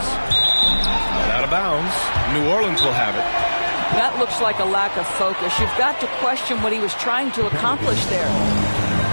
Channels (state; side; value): inverted; both; correlation -1.00